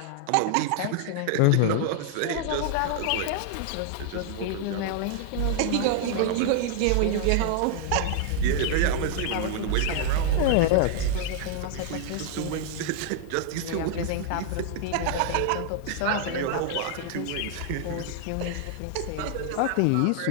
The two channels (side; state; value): both; different; correlation -0.01